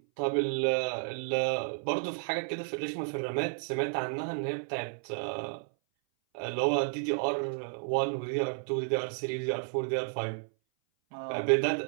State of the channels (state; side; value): silent; left; 57 dB below the other